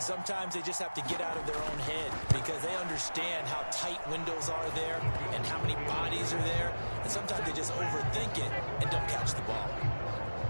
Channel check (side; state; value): both; inverted; correlation -1.00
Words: sometimes they just have to get out of their own head because they understand how tight windows are there and how many bodies are there. And sometimes they just overthink it and don't catch the ball.